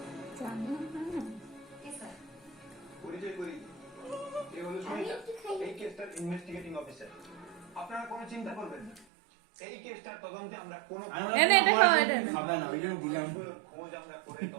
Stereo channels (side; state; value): left; drops out; at 9.1 s